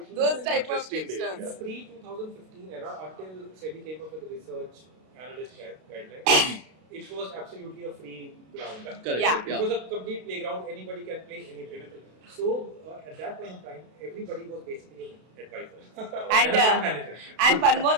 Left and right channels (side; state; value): left; late; 32 ms